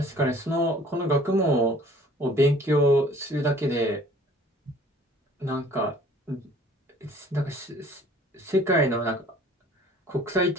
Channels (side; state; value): both; normal; correlation 0.53